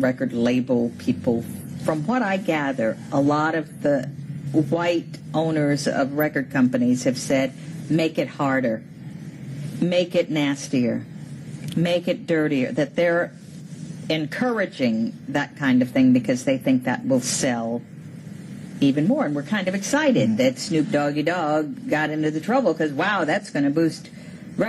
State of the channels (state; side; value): identical; both; correlation 1.00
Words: label people. From what I gather, a lot of the white owners of record companies have said, make it harder, make it nastier, make it dirtier, that they're encouraging that kind of thing because they think that will sell even more. And we're kind of excited that Snoop Doggy Dogg got into the trouble because, wow, that's going to boost